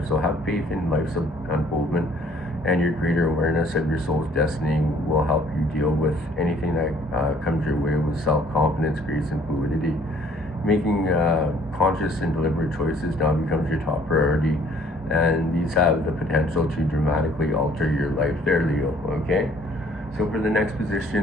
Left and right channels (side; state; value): both; normal; correlation 0.58